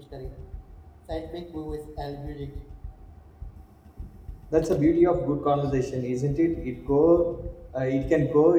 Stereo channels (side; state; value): both; identical; correlation 1.00